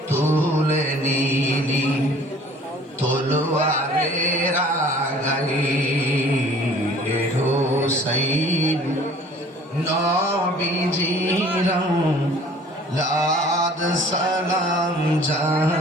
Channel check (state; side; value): normal; both; correlation 0.52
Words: তুলে নিলি তলোয়ারের আগাই হুসাইন নবীজির লাদ সালাম